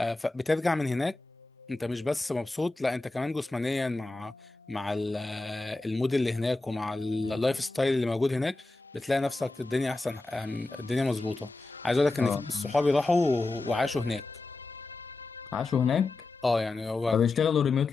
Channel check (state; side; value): quieter; right; 3.2 dB